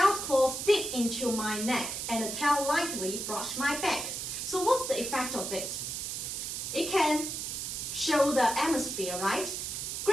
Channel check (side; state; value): right; noise; hiss, 4 dB below the sound